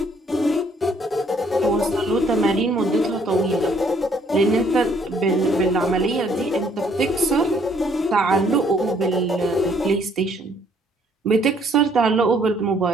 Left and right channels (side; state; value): both; normal; correlation 0.64